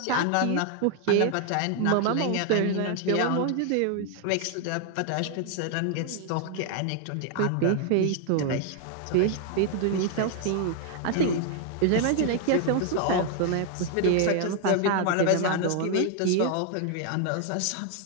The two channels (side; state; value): both; different; correlation 0.00